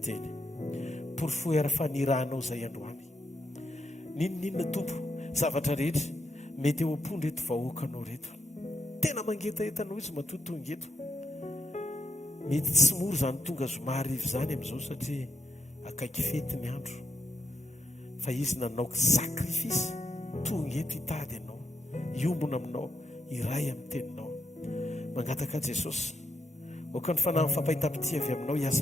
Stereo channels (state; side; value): normal; both; correlation 0.81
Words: teny. Porfoy ara-fanirahanao zay androany. Ninona tompo zavatra rehetra mety eo am-pony reto vahoakanao reto. Tena mangetaetanao izy matotongeto. Mety tsy moro zany tonga zomarivo zany amin'izao satria akaiky fety ny andro. Fa izy nanaoko sakrifisy tongeto hitady ianao, iombona aminao, iray amin'ny teninao. Mangataka Jesosy oka ny fanahy fampahita-pity avy aminao